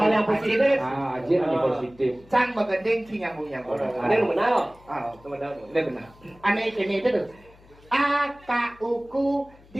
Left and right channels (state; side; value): noise; left; hum, 26 dB below the sound